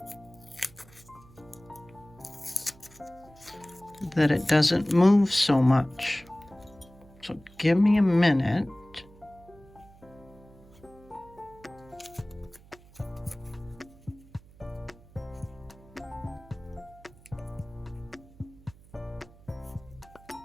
that it doesn't move so much. So give me a minute.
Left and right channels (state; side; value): noise; right; hum, 23 dB below the sound